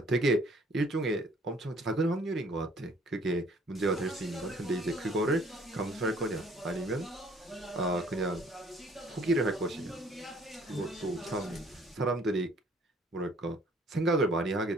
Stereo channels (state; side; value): normal; both; correlation 0.58